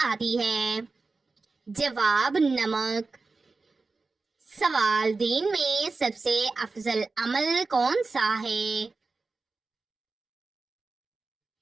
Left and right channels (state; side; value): quieter; left; 3.9 dB